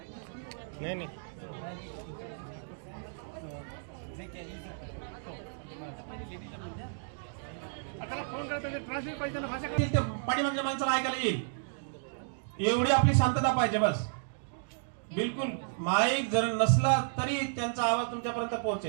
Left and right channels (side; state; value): left; silent; digital silence